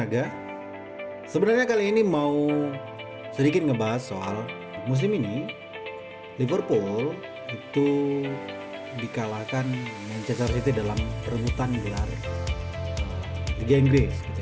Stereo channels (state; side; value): identical; both; correlation 1.00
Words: Sebenarnya kali ini mau sedikit ngebahas soal musim ini Liverpool itu dikalahkan Manchester City dalam perebutan gelar Liga Inggris gitu